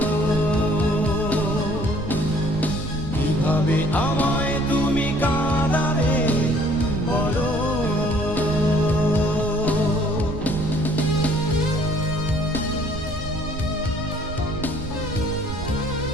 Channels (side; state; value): right; noise; rumble, 8 dB below the sound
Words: কিভাবে আমায় তুমি কাঁদাবে বলো?